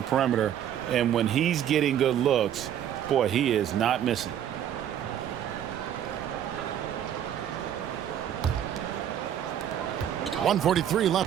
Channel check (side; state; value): left; quieter; 10.1 dB